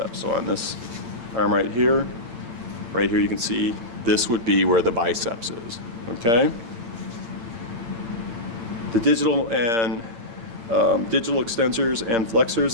So on this arm right here you can see this would be where the biceps is. Okay. The digital and digital extensors and flexors.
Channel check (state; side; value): late; left; 8.8 ms